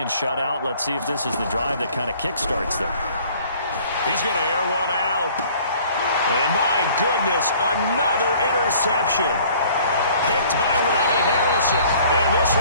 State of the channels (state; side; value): inverted; both; correlation -0.54